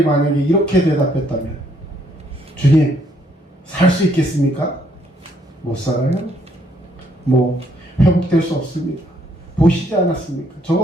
만약에 이렇게 대답했다면, 주님, 살 수 있겠습니까? 못 살아요. 회복될 수 없습니다. 보시지 않았습니까?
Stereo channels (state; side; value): normal; both; correlation 0.69